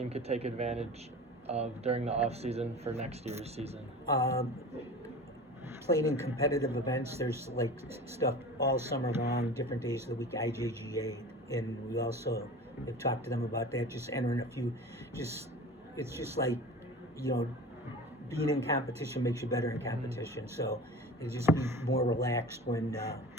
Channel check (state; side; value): normal; both; correlation 0.36